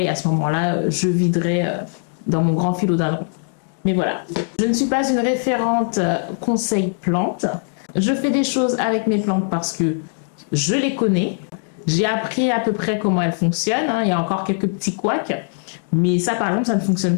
à ce moment-là, je viderai dans mon grand philodendron. Mais voilà, je ne suis pas une référente conseil plantes. Je fais des choses avec mes plantes parce que je les connais. J'ai appris à peu près comment elles fonctionnent. Il y a encore quelques petits couacs. Mais ça, par exemple, ça ne fonctionne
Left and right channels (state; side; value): silent; right; 65 dB below the other